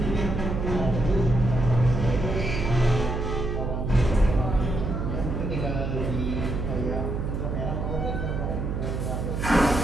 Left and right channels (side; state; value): right; noise; hum, 3 dB below the sound